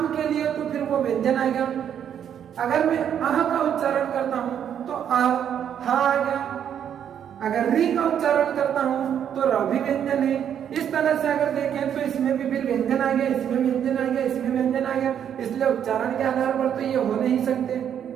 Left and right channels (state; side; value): quieter; left; 9.0 dB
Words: के लिए तो फिर वो व्यंजन आ गया। अगर मैं अह का उच्चारण करता हूं तो अह, हा आ गया। अगर री का उच्चारण करता हूं तो र भी व्यंजन है। इस तरह से अगर देखें तो इसमें भी फिर व्यंजन आ गया, इसमें व्यंजन आ गया, इसमें व्यंजन आ गया। इसलिए उच्चारण के आधार पर तो ये हो नहीं सकते,